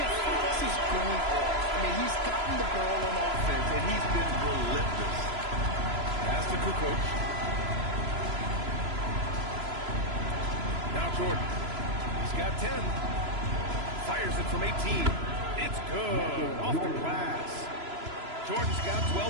Fox is going off. I mean, he's gotten the ball on offense, and he's been relentless. Pass to Kukoc. Now Jordan. He's got 10. Fires it from 18. It's good. Off the glass. Jordan's got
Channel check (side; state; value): left; late; 3.0 ms